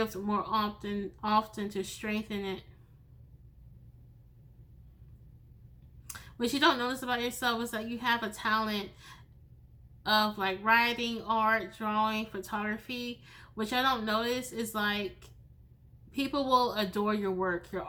more often to strengthen it. What you don't notice about yourself is that you have a talent of like writing, art, drawing, photography. What I don't notice is like people will adore your work, your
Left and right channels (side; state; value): both; identical; correlation 1.00